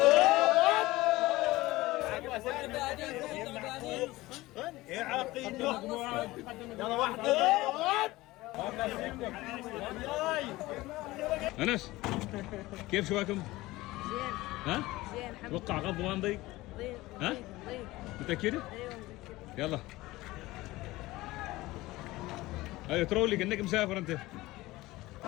أنس كيف شواكم؟ زين. ها؟ زين حبيبي. توقع غض ما نضيق؟ ضيق. ها؟ ضيق. متأكدة؟ ايوه متأكد. يلا. ايوه ترولي كأنك مسافر أنت.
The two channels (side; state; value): right; quieter; 19.0 dB